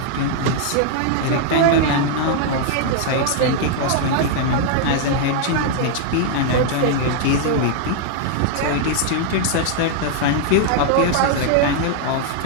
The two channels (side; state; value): both; different; correlation -0.01